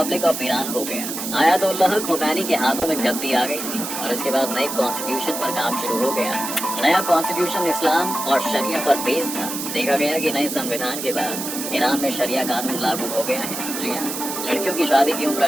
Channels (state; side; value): noise; right; hiss, 6 dB below the sound